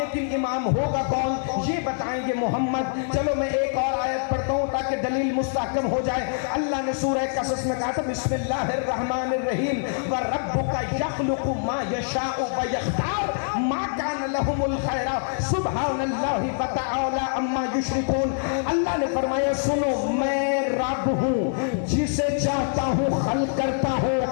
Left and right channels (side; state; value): right; silent; digital silence